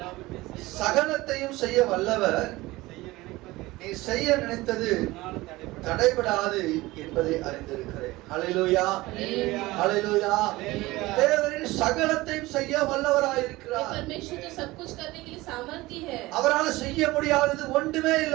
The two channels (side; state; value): left; quieter; 19.7 dB